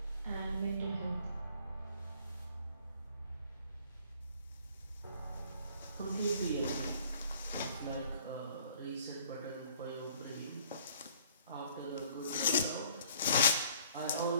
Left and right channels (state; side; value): inverted; both; correlation -0.57